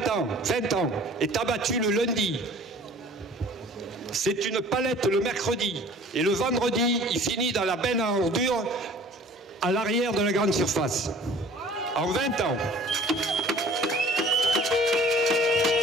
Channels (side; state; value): both; normal; correlation 0.48